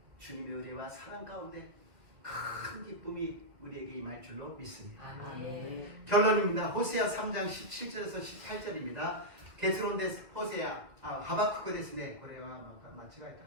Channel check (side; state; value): left; late; 2.3 ms